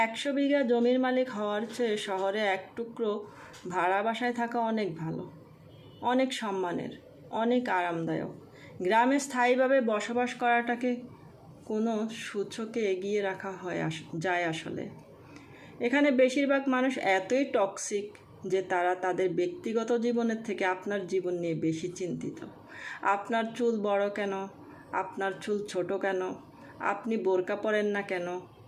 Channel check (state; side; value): identical; both; correlation 1.00